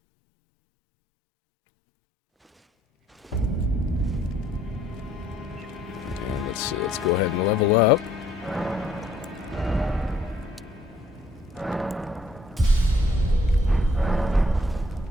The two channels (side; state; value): both; normal; correlation 0.64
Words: And let's go ahead and level up.